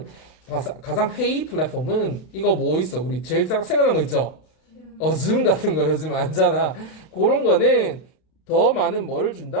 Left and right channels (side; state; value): right; late; 32 ms